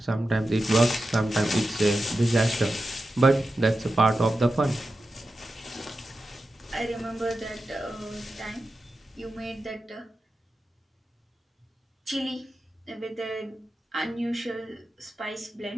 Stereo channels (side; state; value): both; normal; correlation 0.91